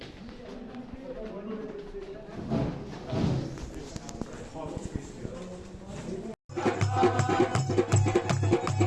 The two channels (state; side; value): identical; both; correlation 1.00